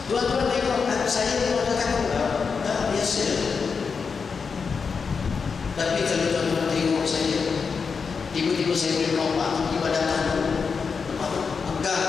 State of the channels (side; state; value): right; quieter; 5.4 dB